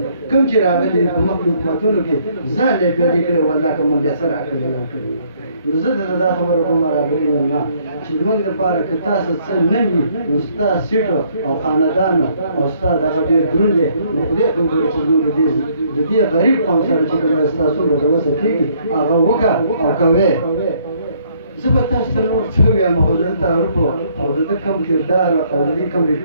کوم چې راغلي په مخکې حکومتونو کې ځان یې پیاده کړی والله که موږ یې څه راکړي نه کړي. نو زه درته دا خبره کوم راغلي مېلمه چې زموږ دپاره که تاسو څه نه وي نو ستا سیټو او خاندانو او ستا دغه ډېر دروند دی نو خدای ته وګورئ چې زموږ د دې غریب قوم سره چې کوم ستاسو له د وسه کېږي هغه وکړه او کوې. زه به تاسو ته نور څه ووایم خو زه تعارف او د ده کوم کردار او د دې کوم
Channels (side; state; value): both; inverted; correlation -0.66